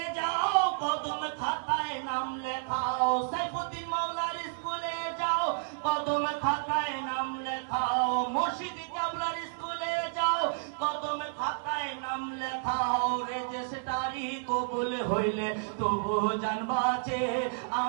যাও কদম খাতায় নাম লেখাও সাইফুদ্দিন মাওলার স্কুলে যাও কদম খাতায় নাম লেখাও মুর্শিদ কেবলার স্কুলে যাও কদম খাতায় নাম লেখাও রেজিস্ট্রারি কবুল হইলে তবু জানবাছে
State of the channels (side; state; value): left; silent; digital silence